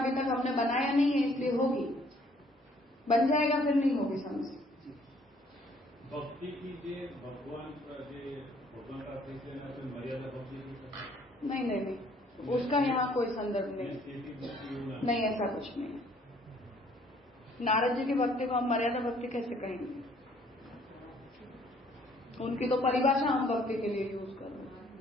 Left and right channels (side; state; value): both; normal; correlation 0.61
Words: तक हमने बनाया नहीं है, इसलिए होगी, बन जाएगा फिर नहीं होगी समझ। भक्ति कीजिए, भगवान का मर्यादा भक्ति नहीं, उसका यहाँ कोई संदर्भ नहीं, ऐसा कुछ नहीं है। नारद जी की भक्ति को हम मर्यादा भक्ति कैसे कहेंगे? उनकी तो परिभाषा हम भक्ति के लिए यूज कर रहे